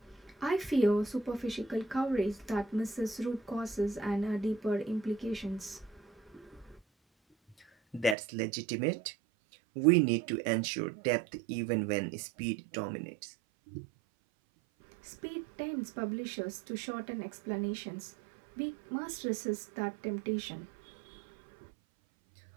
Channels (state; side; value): drops out; left; at 8.2 s